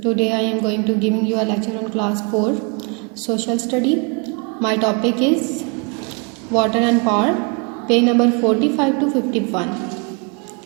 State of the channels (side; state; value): left; quieter; 33.3 dB